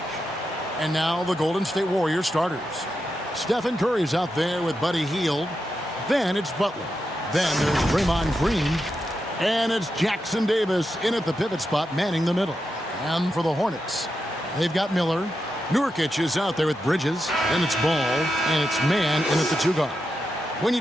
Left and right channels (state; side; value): normal; both; correlation 0.87